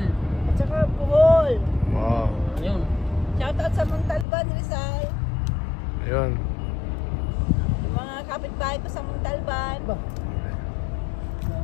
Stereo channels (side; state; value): right; drops out; at 4.2 s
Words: At saka Bohol. Wow. Ayun. Shout out sa Montalban, Rizal. Ayun. Yung mga kapitbahay ko sa Montalban.